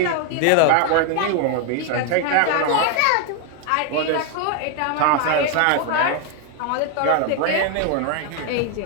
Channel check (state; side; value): different; both; correlation 0.00